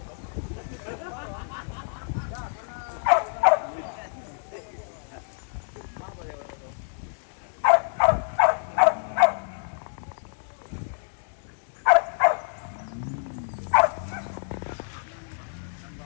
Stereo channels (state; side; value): silent; right; digital silence